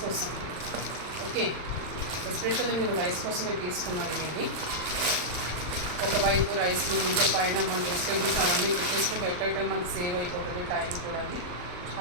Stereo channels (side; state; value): left; late; 39 ms